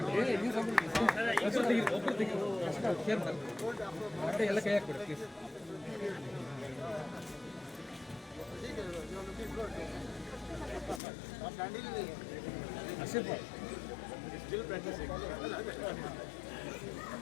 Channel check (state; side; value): drops out; right; at 11.0 s